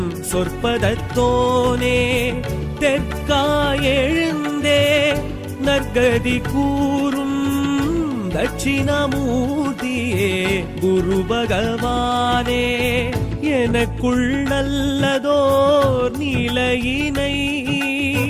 சொற்பதத்தோனே. தெற்காயெழுந்தே நற்கதி கூறும் தட்சிணாமூர்த்தியே குரு பகவானே. எனக்குள் நல்லதோர் நிலையினை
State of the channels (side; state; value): both; identical; correlation 1.00